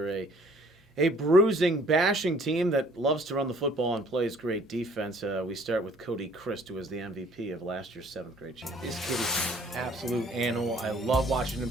a bruising, bashing team that loves to run the football and plays great defense. We start with Cody Christ, who was the MVP of last year's 7th grade champion. This kid is an absolute animal. I love watching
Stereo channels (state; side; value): normal; both; correlation 0.57